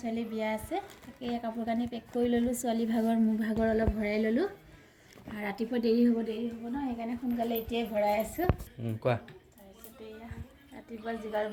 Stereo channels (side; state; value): both; identical; correlation 1.00